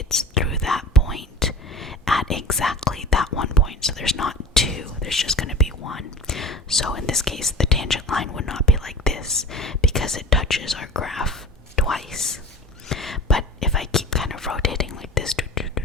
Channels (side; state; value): both; normal; correlation 0.36